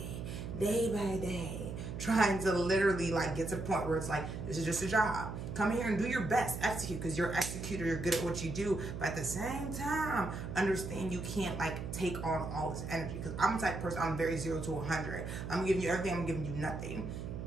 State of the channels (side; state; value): right; noise; hum, 7 dB below the sound